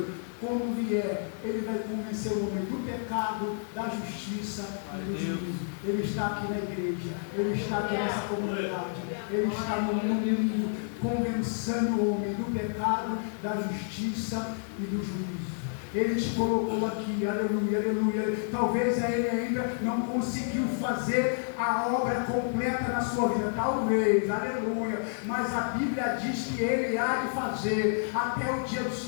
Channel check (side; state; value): right; silent; digital silence